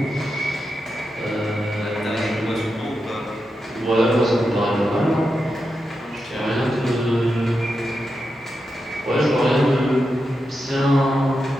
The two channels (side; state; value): both; normal; correlation 0.88